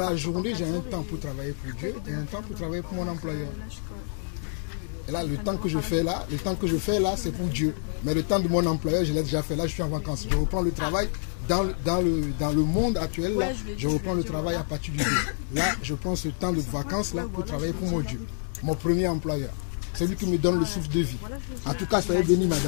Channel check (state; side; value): silent; right; digital silence